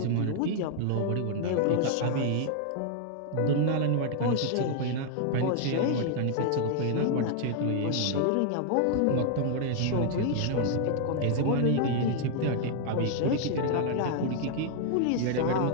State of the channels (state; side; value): different; both; correlation 0.00